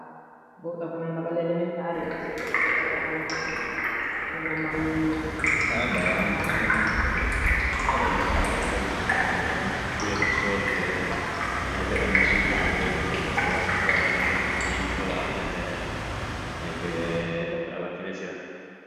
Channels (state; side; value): identical; both; correlation 1.00